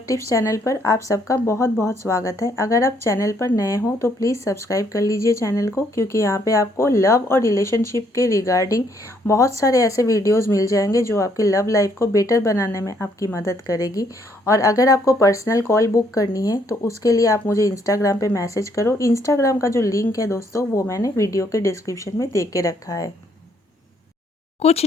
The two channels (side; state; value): both; normal; correlation 0.69